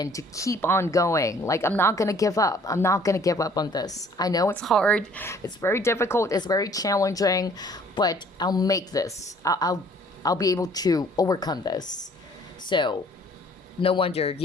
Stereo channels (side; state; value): both; normal; correlation 0.57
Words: to keep on going. Like, I'm not going to give up. I'm not going to give up on this. I know it's hard. It's very difficult. It's very challenging, but I'll make this. I'll be able to overcome this. So, no wonder